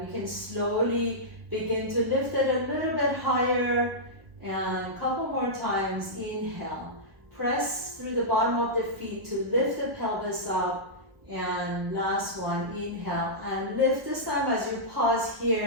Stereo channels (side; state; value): left; late; 1.1 ms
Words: You can slowly begin to lift it a little bit higher. And a couple more times. Inhale, press through the bottom of the feet to lift the pelvis up, and last one. Inhale and lift. This time as you pause